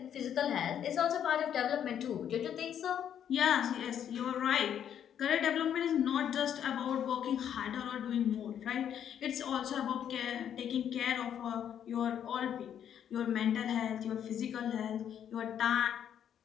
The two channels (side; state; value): right; quieter; 9.3 dB